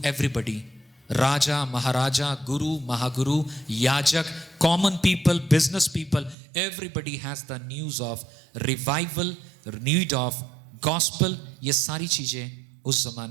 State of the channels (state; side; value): drops out; left; at 6.4 s